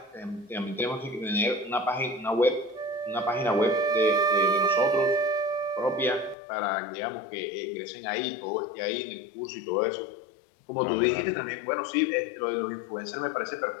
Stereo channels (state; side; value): drops out; right; at 6.4 s